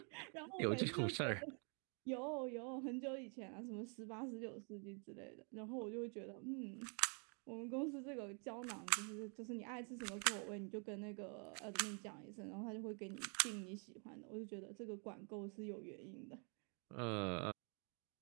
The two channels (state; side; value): quieter; left; 38.5 dB